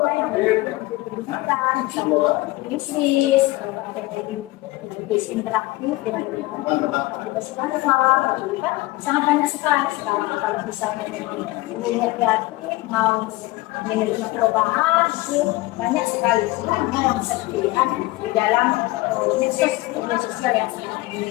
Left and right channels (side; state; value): right; quieter; 20.2 dB